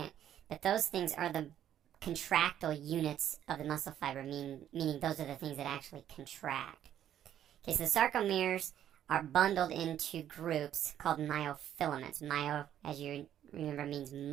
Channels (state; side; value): quieter; left; 10.8 dB